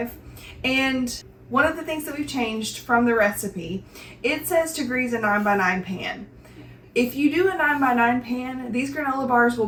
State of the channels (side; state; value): both; identical; correlation 1.00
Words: and one of the things that we've changed from the recipe, it says to grease a 9x9 pan. If you do a 9x9 pan, these granola bars will